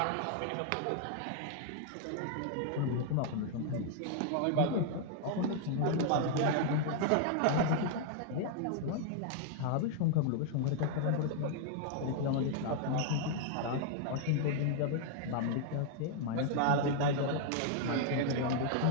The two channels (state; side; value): different; both; correlation 0.00